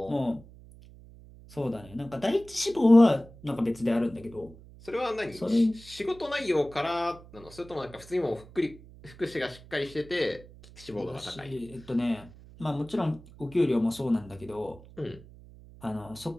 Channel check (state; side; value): noise; right; hum, 20 dB below the sound